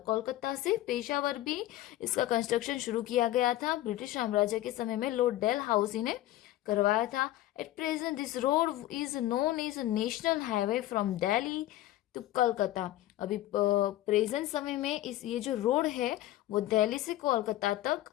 Kolkata से पेशावर भी इसका कंस्ट्रक्शन शुरू किया गया था। ब्रिटिश साम्राज्य के समय में लॉर्ड डलहौसी ने करवाया था। At present this road is known as national highway from Delhi to Kolkata. अभी प्रेजेंट समय में ये जो रोड है वो दिल्ली से कोलकाता तक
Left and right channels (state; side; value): quieter; right; 15.0 dB